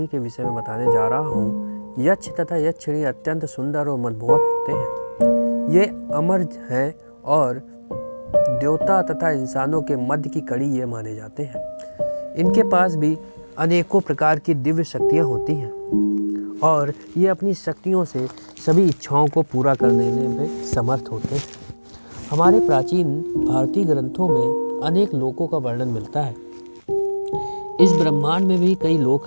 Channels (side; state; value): both; inverted; correlation -1.00